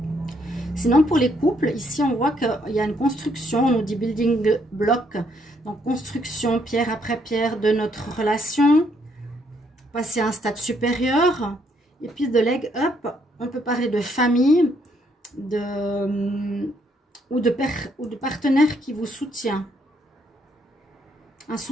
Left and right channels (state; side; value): normal; both; correlation 0.71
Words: Sinon, pour les couples, ici on voit qu'il y a une construction, on nous dit building block, donc construction pierre après pierre de notre relation, passer à un stade supérieur, et puis de leg up, on peut parler de famille, ou de partenaire qui vous soutient. Un